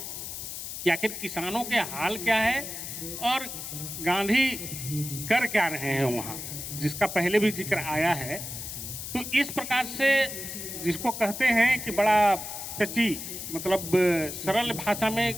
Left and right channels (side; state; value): left; noise; hiss, 8 dB below the sound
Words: कि आखिर किसानों के हाल क्या है और गांधी कर क्या रहे हैं वहाँ, जिसका पहले भी जिक्र आया है। तो इस प्रकार से जिसको कहते हैं कि बड़ा टची, मतलब सरल भाषा